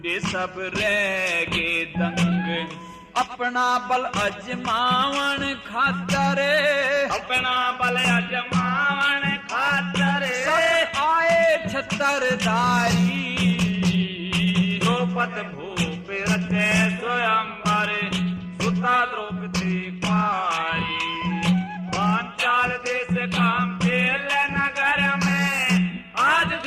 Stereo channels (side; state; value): both; identical; correlation 1.00